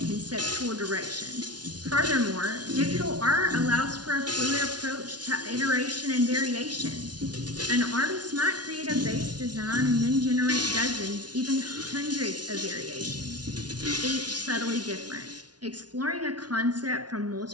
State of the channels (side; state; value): left; late; 0.69 ms